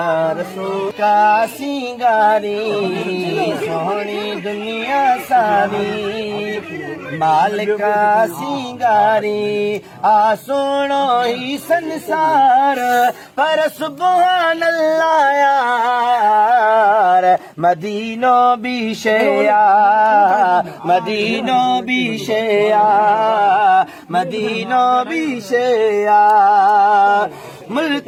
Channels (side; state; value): both; identical; correlation 1.00